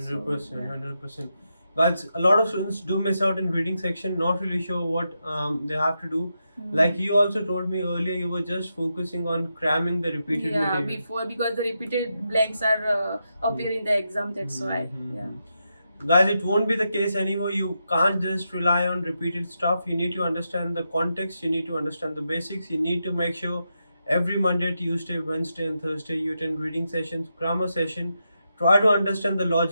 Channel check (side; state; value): both; inverted; correlation -0.85